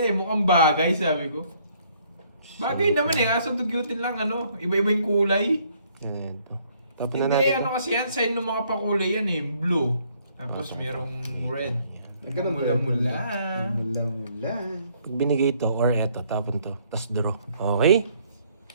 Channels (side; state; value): both; inverted; correlation -0.65